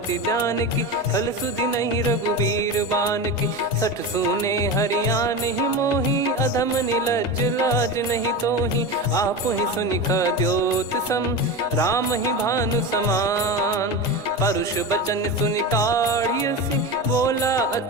जान की, फल सुधि नहीं रघुबीर बान की। सठ सुने हरियाण ही मोही, अधम निलज लाज नहीं तोही। आप ही सुनि खद्योत सम, राम ही भानु समान। परुष बचन सुनि काढ़ियसि, बोला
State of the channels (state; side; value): normal; both; correlation 0.23